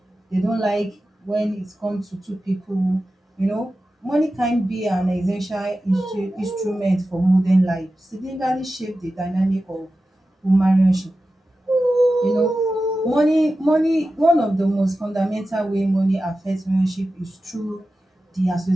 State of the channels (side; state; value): both; normal; correlation 0.93